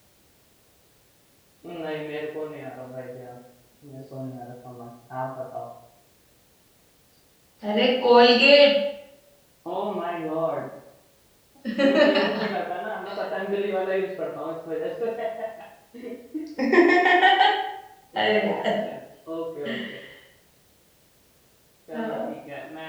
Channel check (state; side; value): identical; both; correlation 1.00